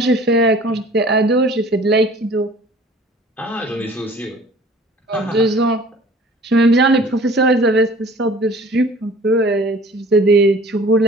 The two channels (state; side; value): normal; both; correlation 0.49